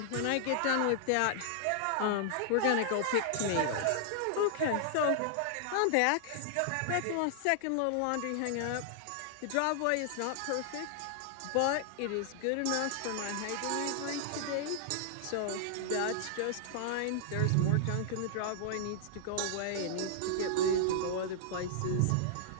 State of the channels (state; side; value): different; both; correlation -0.01